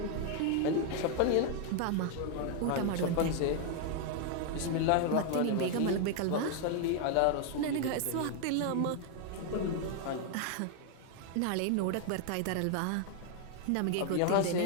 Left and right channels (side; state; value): both; different; correlation 0.00